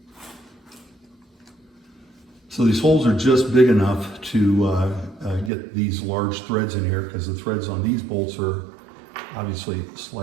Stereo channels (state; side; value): drops out; left; at 5.5 s